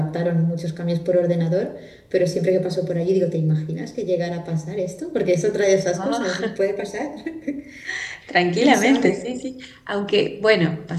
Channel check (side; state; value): both; identical; correlation 1.00